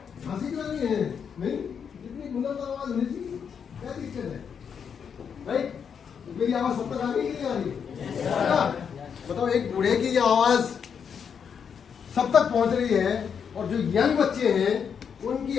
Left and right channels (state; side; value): quieter; right; 7.1 dB